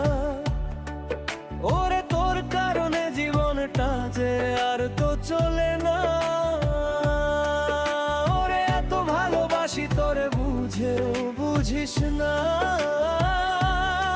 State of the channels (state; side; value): identical; both; correlation 1.00